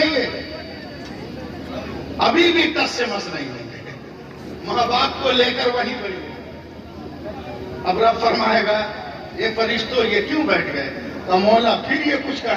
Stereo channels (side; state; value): both; identical; correlation 1.00